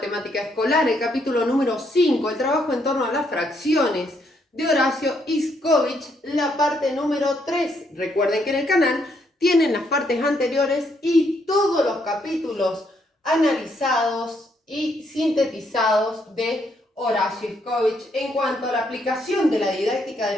Escolar, el capítulo número 5, el trabajo en torno a las fracciones de Horacio Iskowich, la parte número 3. Recuerden que en el canal tienen las partes anteriores y todos los capítulos analizados y sintetizados de Horacio Iskowich en cuanto a la aplicación de la didáctica de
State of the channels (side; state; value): both; normal; correlation 0.74